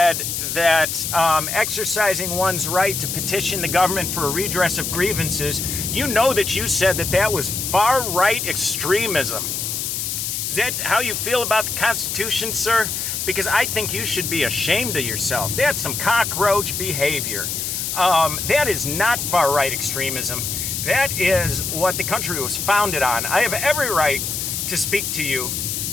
that exercising one's right to petition the government for a redress of grievances, you know that you said that that was far-right extremism. Is that how you feel about the Constitution, sir? Because I think you should be ashamed of yourself. That's some cockroach behavior. That is not far-right extremism. That is what the country was founded on. I have every right to speak to you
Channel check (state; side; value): noise; left; hiss, 3 dB below the sound